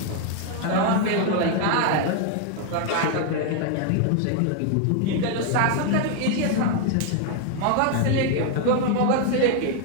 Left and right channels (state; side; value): different; both; correlation 0.00